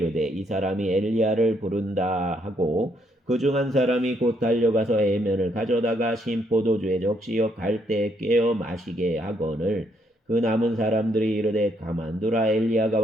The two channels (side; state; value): both; normal; correlation 0.72